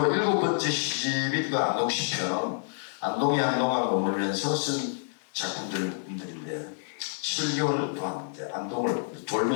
7번째 시집이 그 안동시편은 안동에 한동안 머물면서 쓴 작품들인데 7개월 동안 이제 안동을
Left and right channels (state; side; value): silent; right; 59 dB below the other